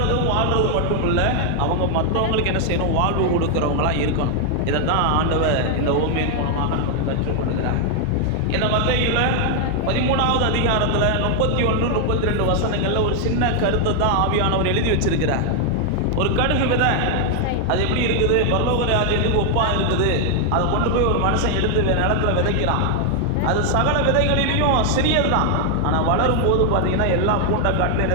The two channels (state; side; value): different; both; correlation 0.00